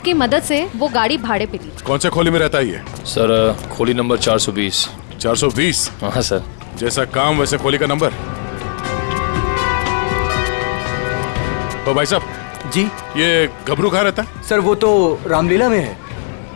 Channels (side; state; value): right; silent; digital silence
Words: की मदद से वो गाड़ी भाड़े पे ली। कौन से खोली में रहता है ये? सर खोली नंबर 420। 420? हाँ सर। जैसा काम वैसे खोली का नंबर। तो भाई साहब जी, ये गबरू कहाँ रहता है? सर वो तो रामलीला में है।